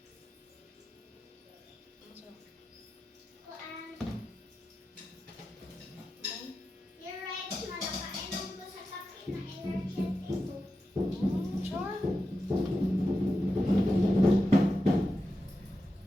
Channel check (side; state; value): both; normal; correlation 0.90